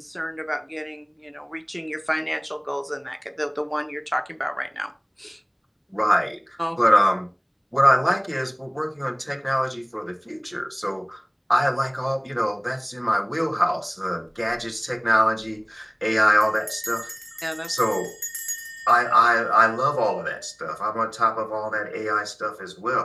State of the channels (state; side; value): identical; both; correlation 1.00